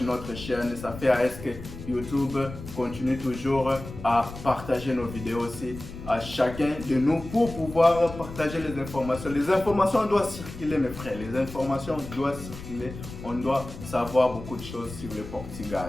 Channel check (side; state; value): left; noise; rumble, 12 dB below the sound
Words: notre chaîne, ça fait à ce que YouTube continue toujours à partager nos vidéos aussi à chacun de nous pour pouvoir partager les informations. Les informations doivent circuler mes frères, les informations doivent circuler, on doit savoir beaucoup de choses sur le